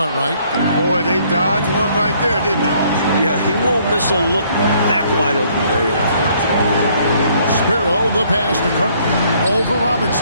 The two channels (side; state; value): both; inverted; correlation -0.64